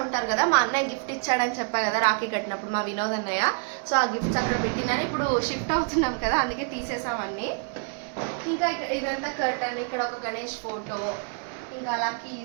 ఉంటారు కదా, మా అన్నయ్య గిఫ్ట్ ఇచ్చాడని చెప్పా కదా రాఖీ కట్టినప్పుడు, మా వినోద్ అన్నయ్య. సో ఆ గిఫ్ట్స్ అక్కడ పెట్టినని ఇప్పుడు షిఫ్ట్ అవుతున్నాం కదా, అందుకే తీసేసాం అన్నీ. ఇంకా ఇదంతా కర్టన్, ఇక్కడ ఒక గణేష్ ఫోటో, ఇంకా అలా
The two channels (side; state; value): left; quieter; 40.0 dB